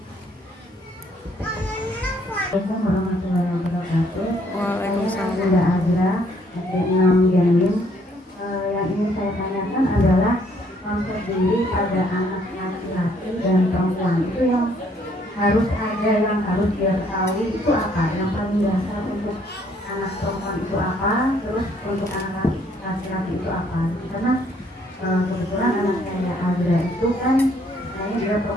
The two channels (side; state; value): both; normal; correlation 0.66